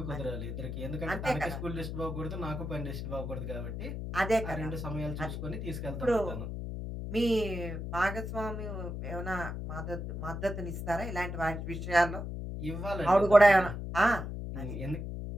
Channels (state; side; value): noise; left; hum, 5 dB below the sound